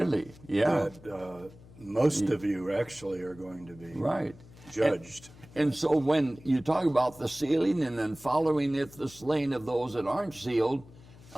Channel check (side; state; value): left; noise; hum, 22 dB below the sound